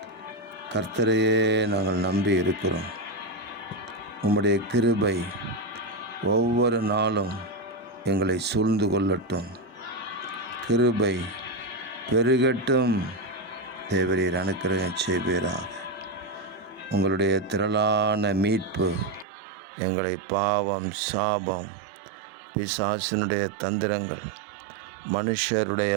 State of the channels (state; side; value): drops out; left; at 19.2 s